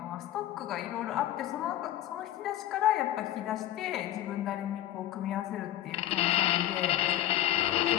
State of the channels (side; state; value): right; quieter; 13.2 dB